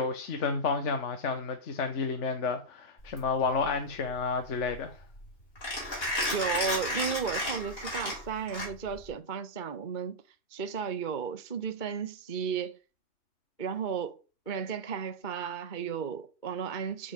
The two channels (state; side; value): late; right; 2.9 ms